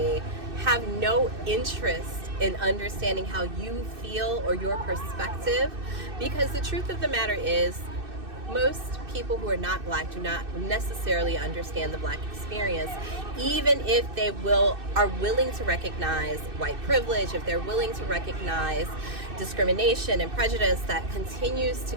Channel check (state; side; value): late; left; 2.6 ms